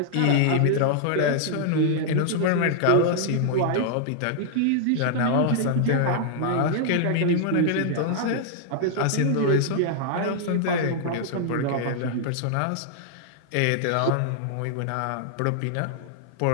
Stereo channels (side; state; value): both; different; correlation -0.01